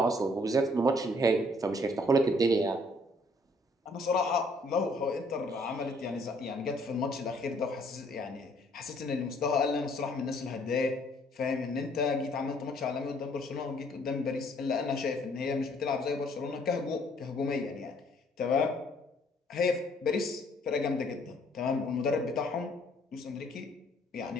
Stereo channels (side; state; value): both; normal; correlation 0.63